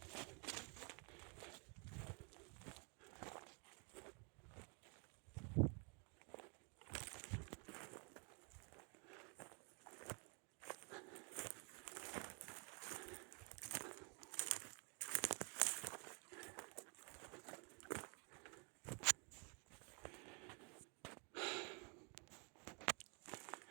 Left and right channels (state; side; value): quieter; left; 35.6 dB